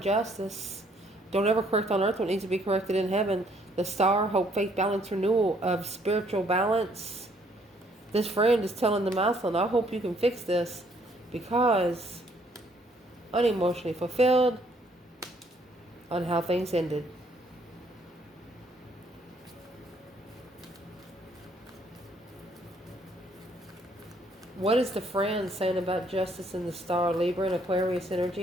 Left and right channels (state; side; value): normal; both; correlation 0.66